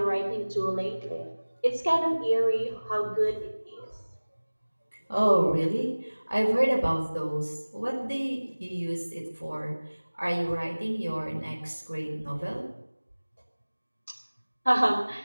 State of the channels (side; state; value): both; inverted; correlation -1.00